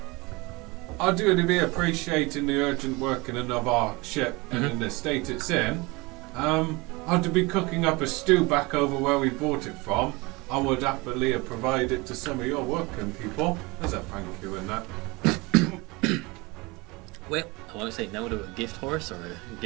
do be appreciating the urgent working of our ship and in the state it's in. I do be cooking up a stew back over where we bought it from. I would happily provide it to some of your working people as a thank you in that. Well, I won't say no to a gift horse or a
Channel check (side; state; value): left; quieter; 24.8 dB